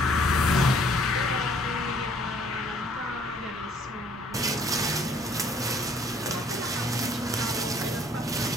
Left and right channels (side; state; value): both; normal; correlation 0.60